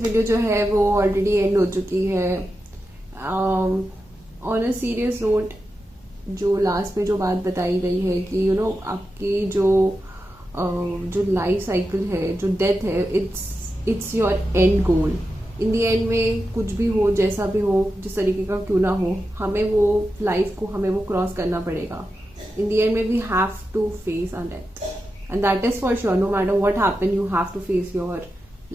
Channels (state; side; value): normal; both; correlation 0.90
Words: वीडियो जो है वो ऑलरेडी एंड हो चुकी है। ऑन अ सीरियस नोट, जो लास्ट में जो बात बताई गई है कि आपकी जो लाइफ साइकिल है, जो डेथ है, it's your and goal. In the end में कुछ भी हो, जैसा भी हो, जिस तरीके का क्यों ना हो, हमें वो लाइफ को हमें वो क्रॉस करना पड़ेगा। इन दी एंड में we have to face our death, and that is for sure. No matter what happen, you have to face your